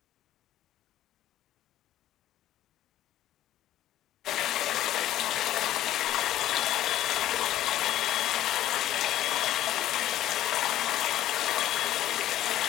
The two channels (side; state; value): right; quieter; 13.2 dB